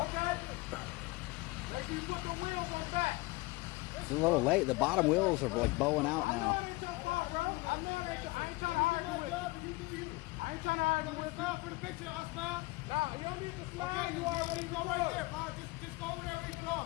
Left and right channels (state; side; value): quieter; right; 22.7 dB